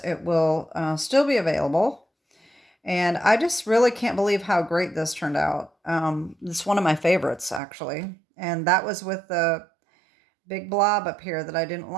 it will still be available. And I just really can't believe how great this turned out. It's one of my favorites, actually. And that was with the big blob up here that I didn't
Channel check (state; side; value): drops out; left; at 7.6 s